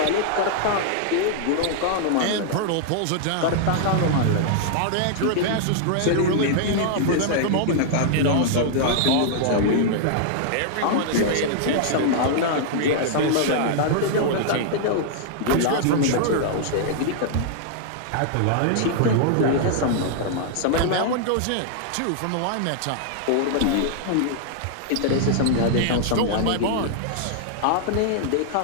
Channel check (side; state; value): both; different; correlation -0.01